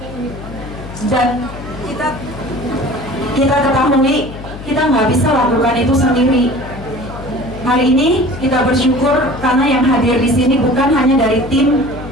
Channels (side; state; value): left; noise; hum, 12 dB below the sound